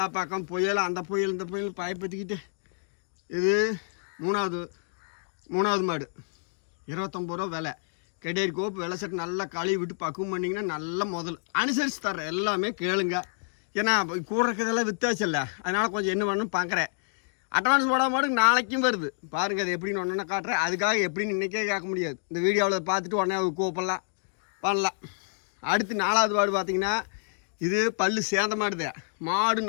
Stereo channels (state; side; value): silent; right; digital silence